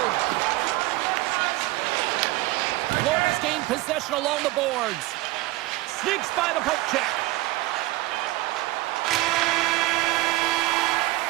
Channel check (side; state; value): left; quieter; 18.9 dB